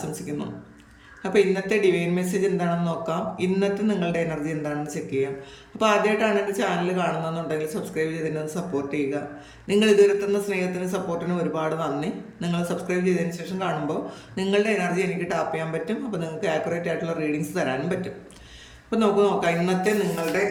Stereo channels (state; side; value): identical; both; correlation 1.00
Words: അപ്പോൾ ഇന്നത്തെ ഡിവൈൻ മെസ്സേജ് എന്താണെന്ന് നോക്കാം. ഇന്നത്തെ നിങ്ങളുടെ എനർജി എന്താണെന്ന് ചെക്ക് ചെയ്യാം. അപ്പോൾ ആദ്യമായിട്ടാണ് എൻ്റെ ചാനൽ കാണുന്നതെന്നുണ്ടെങ്കിൽ സബ്സ്ക്രൈബ് ചെയ്തതിന് സപ്പോർട്ട് ചെയ്യുക. നിങ്ങൾ ഇതുവരെ തന്ന സ്നേഹത്തിനും സപ്പോർട്ടിനും ഒരുപാട് നന്ദി. നിങ്ങൾ സബ്സ്ക്രൈബ് ചെയ്തതിന് ശേഷം കാണുമ്പോൾ നിങ്ങളുടെ എനർജി എനിക്ക് ടാപ്പ് ചെയ്യാൻ പറ്റും. അപ്പോൾ നിങ്ങൾക്ക് ആക്യുറേറ്റ് ആയിട്ടുള്ള റീഡിങ്സ് തരാനും പറ്റും. അപ്പോൾ നമുക്ക് നോക്കാം ഇന്നത്തെ നിങ്ങളുടെ